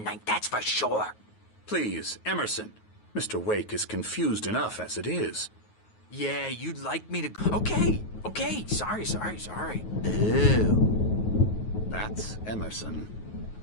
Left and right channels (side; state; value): right; late; 9.4 ms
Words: that's for sure. Please, Emerson. Mr. Wake is confused enough as it is. Yeah, you'd like me to... Okay, sorry. Ew. That's Emerson.